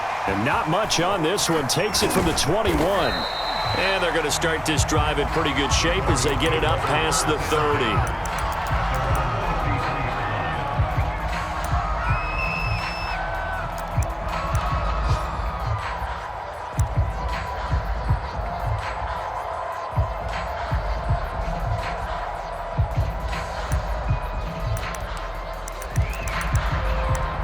And not much on this one. Takes it from the 21. And they're going to start this drive in pretty good shape as they get it up past the 30.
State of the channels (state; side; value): identical; both; correlation 1.00